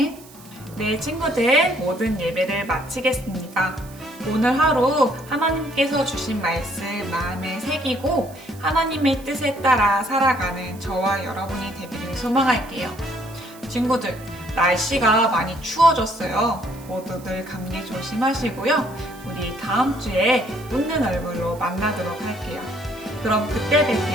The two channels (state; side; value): noise; right; hiss, 22 dB below the sound